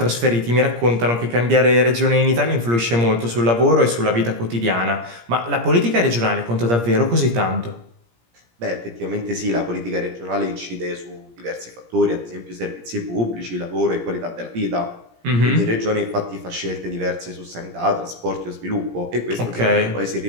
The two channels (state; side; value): late; left; 17 ms